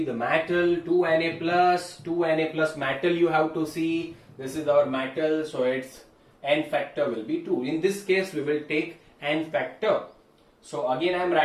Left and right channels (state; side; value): identical; both; correlation 1.00